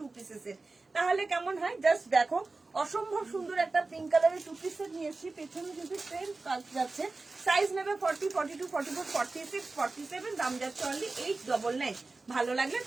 পিসেসের, তাহলে কেমন হয় জাস্ট দেখো। অসম্ভব সুন্দর একটা পিঙ্ক কালারের 2 পিসের নিয়েছি। পেছনে যদি ট্রেন কাজ যাচ্ছে, সাইজ নেবে 40, 42, 44, 46, 47, দাম যাচ্ছে অনলি 899। ভালো লাগলে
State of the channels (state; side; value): quieter; left; 3.6 dB